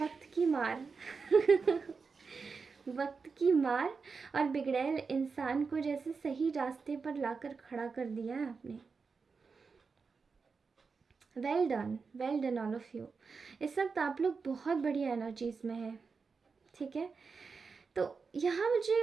की मार। वक्त की मार। और बिगड़ैल इंसान को जैसे सही रास्ते पर लाकर खड़ा कर दिया है आपने। Well done all of you. इस वक्त आप लोग बहुत बढ़िया एनर्जीज में हैं, ठीक है। तो यहाँ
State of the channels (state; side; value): quieter; left; 5.0 dB